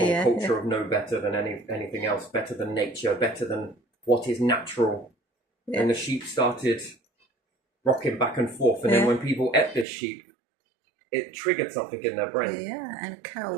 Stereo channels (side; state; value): left; drops out; at 9.9 s